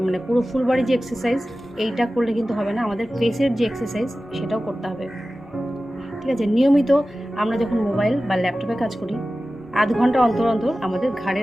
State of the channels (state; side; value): normal; both; correlation 0.95